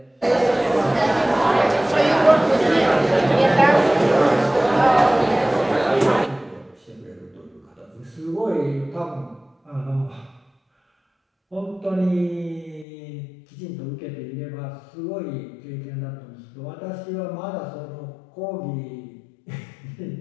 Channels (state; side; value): drops out; right; at 12.9 s